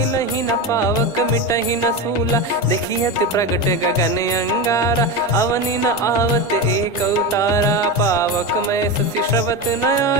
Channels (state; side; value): normal; both; correlation 0.19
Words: न पावक मिटहि न सूला। देखियत प्रगट गगन अंगारा, अवनि न आवत एक अवतारा। पावक मैं शशि श्रवत न